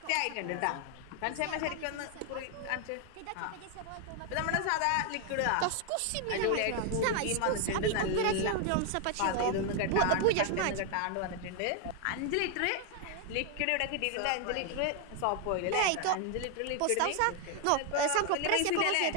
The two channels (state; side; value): different; both; correlation 0.01